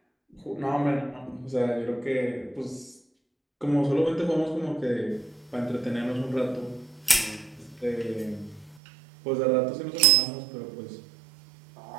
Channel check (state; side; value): drops out; left; at 8.8 s